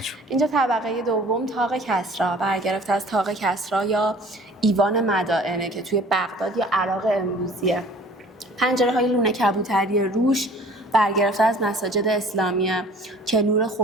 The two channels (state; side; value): normal; both; correlation 0.49